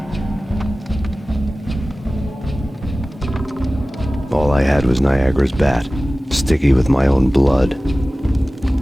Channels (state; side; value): normal; both; correlation 0.97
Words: All I had was Niagara's bat, sticky with my own blood.